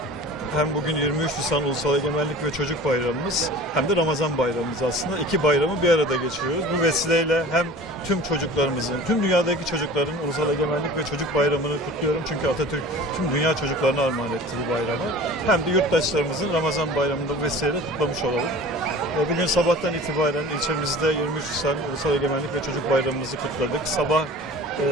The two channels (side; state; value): both; normal; correlation 0.41